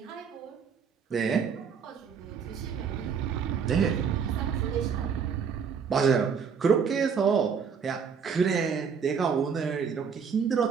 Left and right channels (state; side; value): quieter; left; 6.4 dB